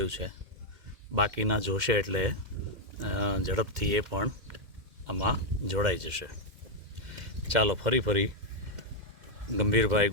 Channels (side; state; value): left; late; 2.1 ms